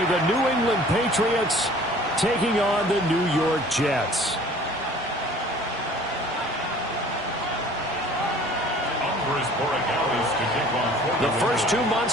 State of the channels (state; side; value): normal; both; correlation 0.49